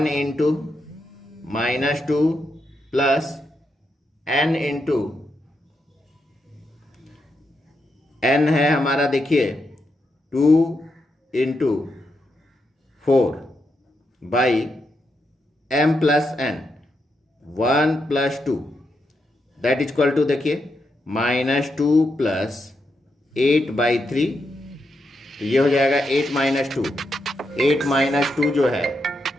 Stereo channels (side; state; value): both; normal; correlation 0.83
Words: into -2 plus n into n है हमारा, देखिए 2 into 4 by m plus n, 1 plus 2 that is equal to, देखिए -2 प्लस 8/3, तो ये हो जाएगा 8 माइनस 2। 8 माइनस 2 जो है